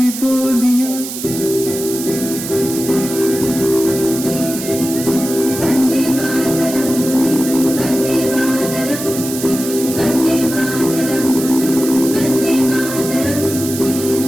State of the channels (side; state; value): right; noise; hiss, 8 dB below the sound